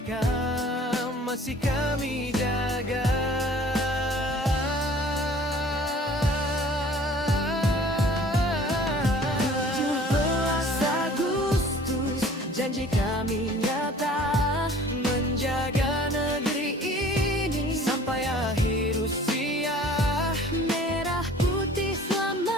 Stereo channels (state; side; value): normal; both; correlation 0.49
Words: masih kami jaga. 17 Agustus, janji kami nyata, menjaga negeri ini sampai akhir usia. Merah putih